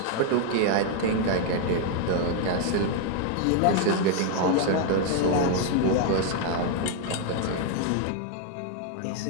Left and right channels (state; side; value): different; both; correlation 0.00